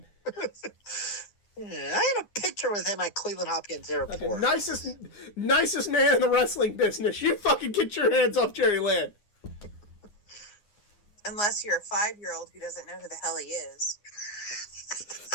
Yeah, I had a picture with him at Cleveland Hopkins Airport. Okay, nicest man in the wrestling business. You fucking get your hands off Jerry Lynn. Unless you're a 5-year-old who doesn't know who the hell he is.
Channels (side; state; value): right; late; 9.7 ms